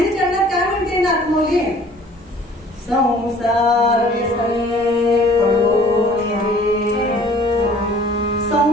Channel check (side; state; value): both; normal; correlation 0.52